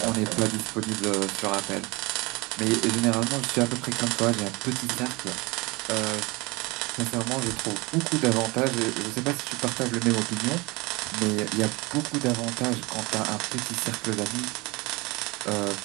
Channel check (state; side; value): quieter; left; 24.7 dB